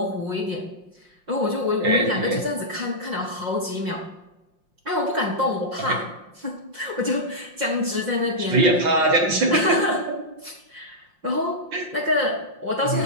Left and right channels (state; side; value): late; left; 5.6 ms